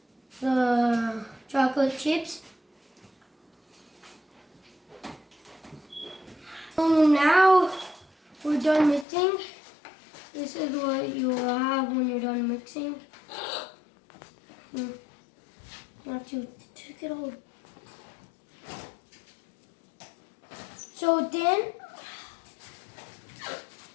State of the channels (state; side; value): drops out; right; at 9.1 s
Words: the chocolate chips. So now we're done mixing. This is what you will have when you're done mixing. You have to take it all. So then,